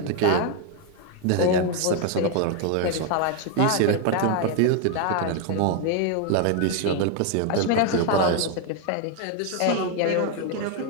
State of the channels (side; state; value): both; different; correlation 0.01